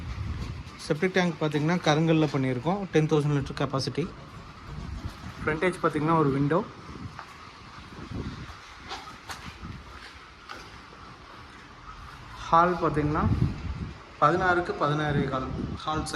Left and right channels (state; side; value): identical; both; correlation 1.00